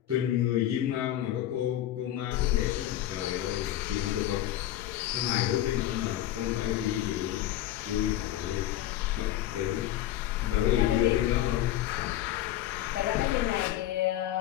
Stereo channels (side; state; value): right; quieter; 13.2 dB